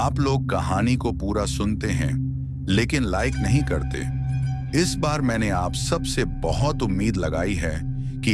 लोग कहानी को पूरा सुनते हैं लेकिन लाइक नहीं करते। इस बार मैंने आप सबसे बहुत उम्मीद लगाई है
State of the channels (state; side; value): identical; both; correlation 1.00